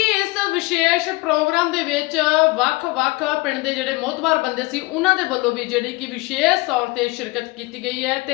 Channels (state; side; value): quieter; right; 23.2 dB